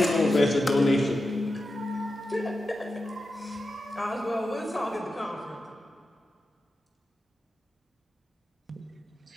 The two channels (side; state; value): both; normal; correlation 0.90